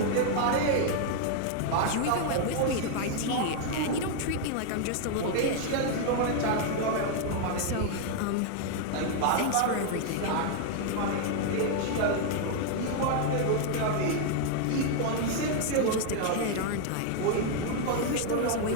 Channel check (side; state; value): both; different; correlation 0.00